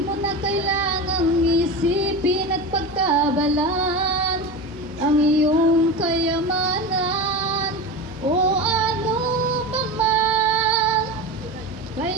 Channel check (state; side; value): normal; both; correlation 0.25